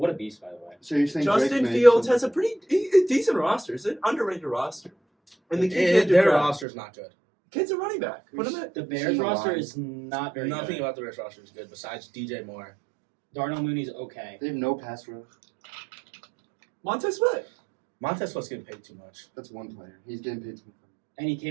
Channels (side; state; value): left; drops out; at 6.7 s